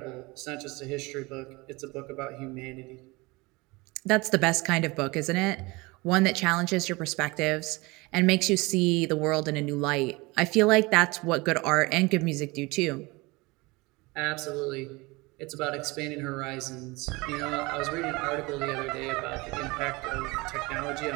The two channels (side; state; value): left; quieter; 24.0 dB